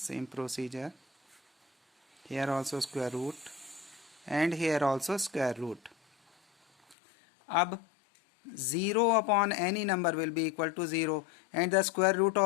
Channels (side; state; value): right; drops out; at 7.0 s